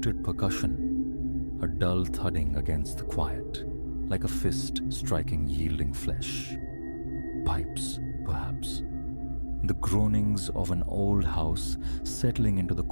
percussion, a dull thudding against the quiet, like a fist striking yielding flesh. Pipes, perhaps. The groanings of an old house settling into the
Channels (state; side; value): inverted; both; correlation -1.00